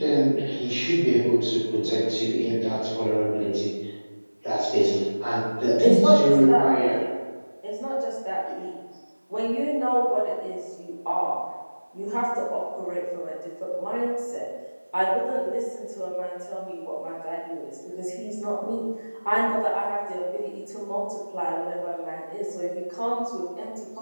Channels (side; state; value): both; inverted; correlation -1.00